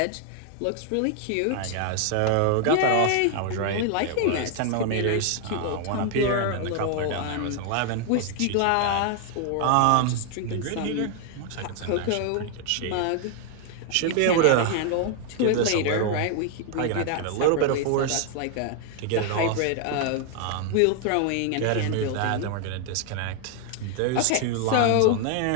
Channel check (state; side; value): different; both; correlation 0.00